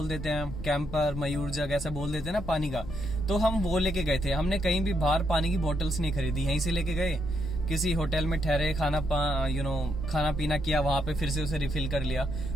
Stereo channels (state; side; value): noise; left; rumble, 11 dB below the sound